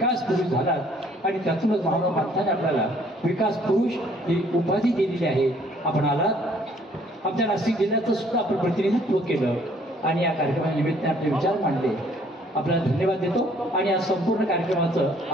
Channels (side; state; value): both; normal; correlation 0.61